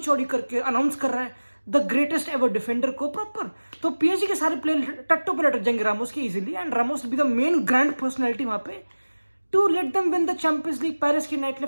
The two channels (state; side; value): inverted; both; correlation -1.00